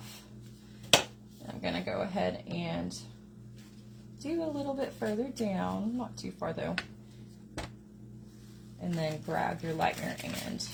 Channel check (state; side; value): identical; both; correlation 1.00